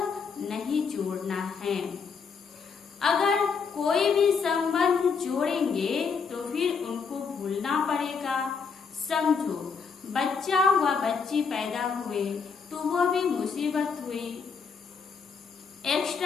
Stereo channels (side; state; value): right; quieter; 5.6 dB